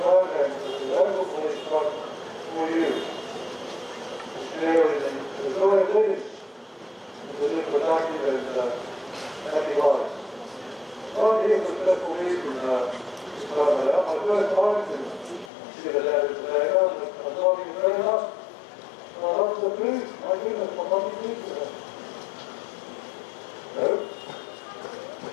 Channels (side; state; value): right; drops out; at 15.5 s